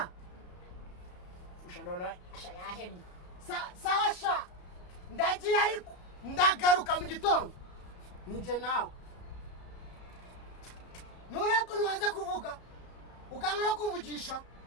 Fusha none asha yahennye sawa sha ndagiye ariko ndagaruka mu gitondo ninje nawe nureko nwaze kuvuga ukanga no kumvugisha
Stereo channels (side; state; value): right; late; 33 ms